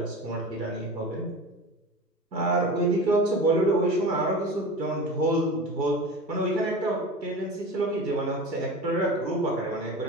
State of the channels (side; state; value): both; normal; correlation 0.32